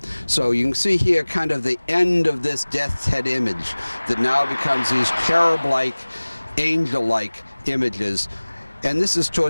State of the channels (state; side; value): inverted; both; correlation -1.00